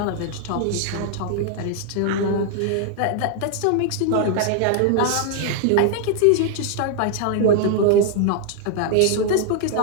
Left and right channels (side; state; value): both; different; correlation 0.00